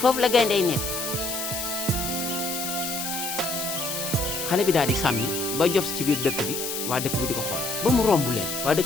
la gaynde yi nekk xale bi daal di sàmmi ba jof ci biir dëkk bi waa dëkk bi di ko xool ba mu romb leen waa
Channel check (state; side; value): noise; left; hiss, 4 dB below the sound